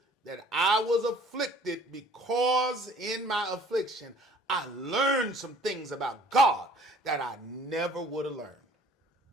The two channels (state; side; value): normal; both; correlation 0.54